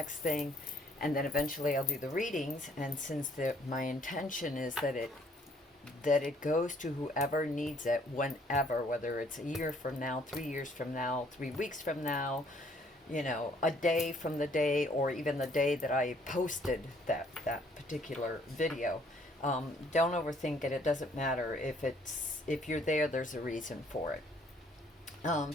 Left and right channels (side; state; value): both; normal; correlation 0.63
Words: thing, and then eventually I'll do the readings. And since my intention is that it goes to whoever needs it, whenever, whether it's a year from now, 3 years from now, 3 weeks from now, you know, a day from the day, or even the day that I posted that particular video. Don't overthink it. It doesn't matter if you're there. There's a reason for it.